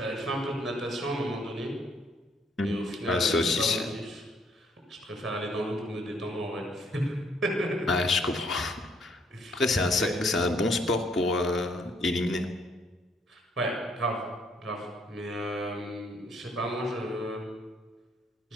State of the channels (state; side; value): normal; both; correlation 0.67